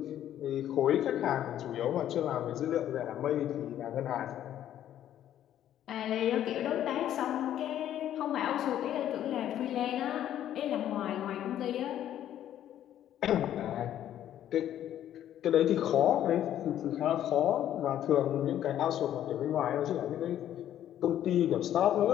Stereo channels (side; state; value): right; quieter; 11.4 dB